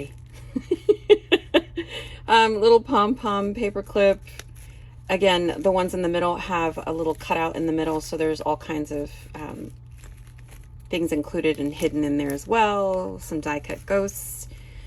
Little pom-pom paper clip. Again, the ones in the middle have a little cutout in the middle, so there's all kinds of things included and hidden in there as well. Some die cut ghosts,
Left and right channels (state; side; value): identical; both; correlation 1.00